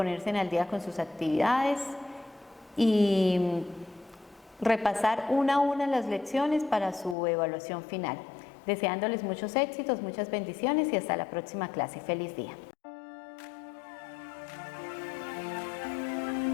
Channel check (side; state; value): right; drops out; at 7.2 s